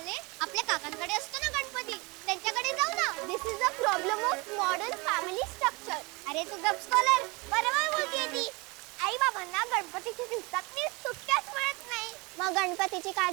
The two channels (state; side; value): quieter; left; 26.4 dB